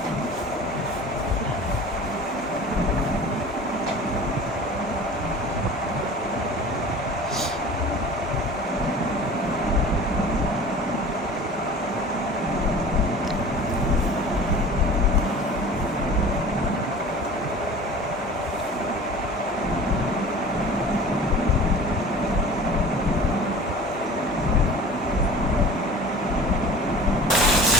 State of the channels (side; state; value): both; normal; correlation 0.41